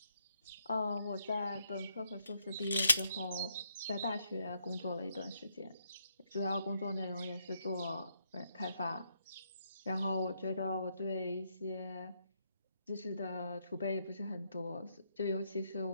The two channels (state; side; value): inverted; both; correlation -0.76